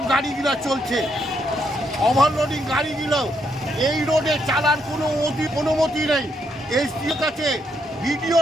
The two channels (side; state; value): both; normal; correlation 0.76